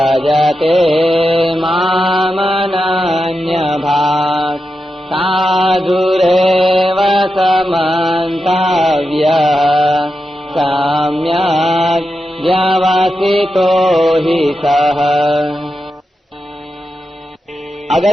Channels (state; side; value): normal; both; correlation 0.89